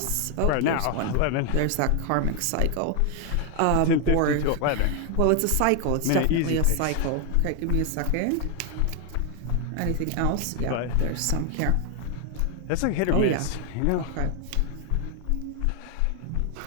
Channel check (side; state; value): both; different; correlation 0.00